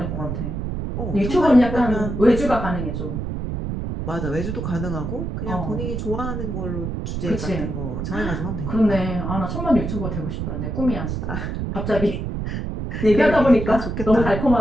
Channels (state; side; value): noise; right; rumble, 4 dB below the sound